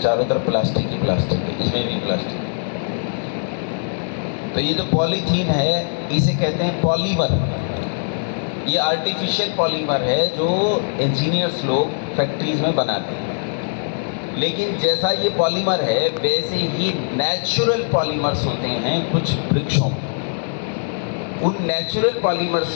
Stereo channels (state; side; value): silent; right; digital silence